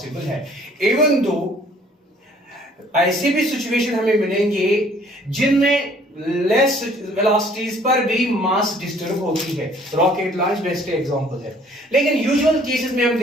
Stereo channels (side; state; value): both; normal; correlation 0.57